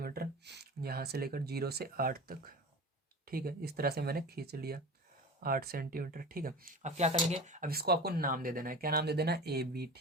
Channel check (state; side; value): normal; both; correlation 0.33